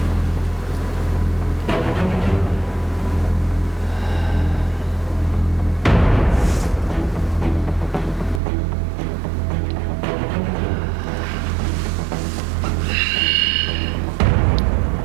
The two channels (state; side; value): drops out; left; at 8.4 s